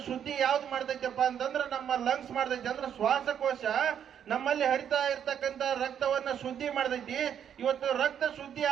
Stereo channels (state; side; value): quieter; left; 8.9 dB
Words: ಶುದ್ಧಿ ಯಾವ್ದು ಮಾಡ್ತೈತಪ್ಪ ಅಂತಂದ್ರೆ ನಮ್ಮ ಲಂಗ್ಸ್ ಮಾಡ್ತೈತಿ. ಅಂದ್ರೆ ಶ್ವಾಸಕೋಶ ನಮ್ಮಲ್ಲಿ ಹರಿತಾ ಇರ್ತಕ್ಕಂಥ ರಕ್ತವನ್ನ ಶುದ್ಧಿ ಮಾಡ್ತೈತಿ. ಇವತ್ತು ರಕ್ತ ಶುದ್ಧಿ